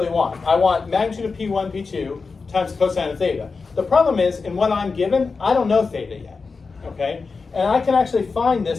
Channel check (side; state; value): right; quieter; 4.5 dB